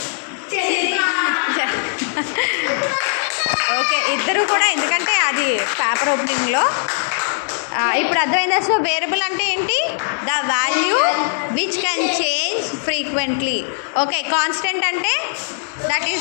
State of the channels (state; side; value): silent; right; digital silence